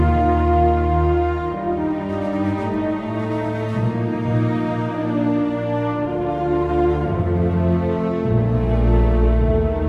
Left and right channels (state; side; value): identical; both; correlation 1.00